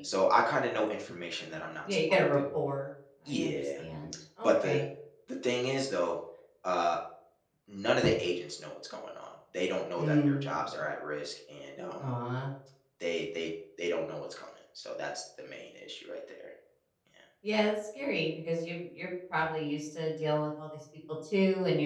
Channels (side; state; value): both; identical; correlation 1.00